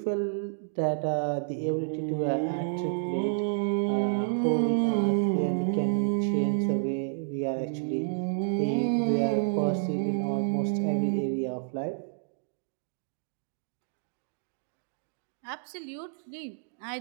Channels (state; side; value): silent; left; digital silence